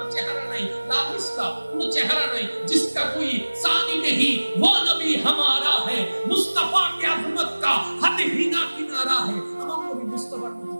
চেহারা নাই, লা মিসলা কোনো চেহারা নাই, जिसका कोई सानी नहीं वो नबी हमारा है, मुस्तफा की अजमत का हद ही ना किनारा है। আমার নবী মুস্তাফার মতো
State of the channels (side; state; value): both; inverted; correlation -1.00